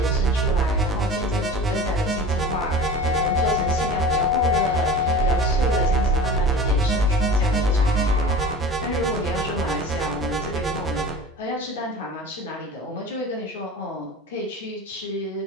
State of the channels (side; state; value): both; normal; correlation 0.36